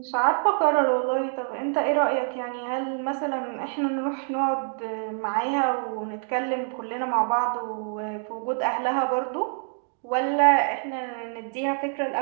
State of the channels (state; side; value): silent; left; 61 dB below the other